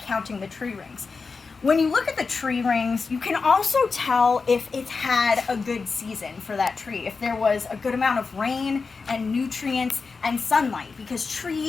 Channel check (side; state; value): right; quieter; 4.6 dB